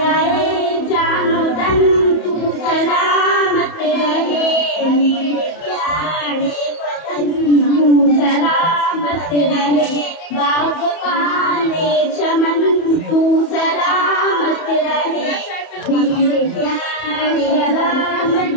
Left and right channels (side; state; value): right; late; 31 ms